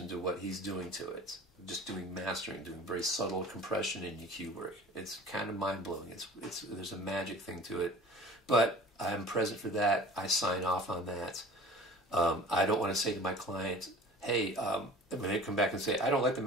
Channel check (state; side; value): normal; both; correlation 0.44